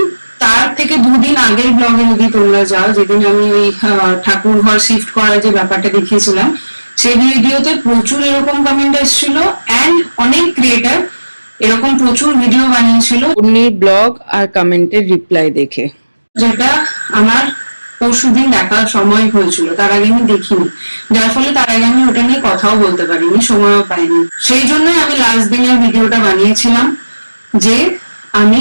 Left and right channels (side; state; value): both; inverted; correlation -1.00